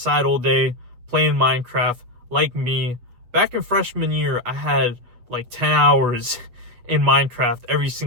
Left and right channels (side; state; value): left; late; 8.5 ms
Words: all day playing Minecraft like me. Back in freshman year, I had like 10 hours in Minecraft every